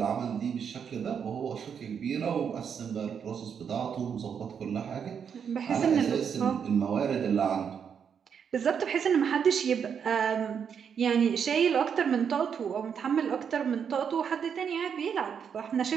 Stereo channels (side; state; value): left; quieter; 7.3 dB